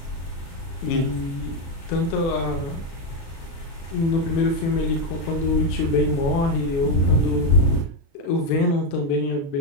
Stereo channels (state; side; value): late; right; 36 ms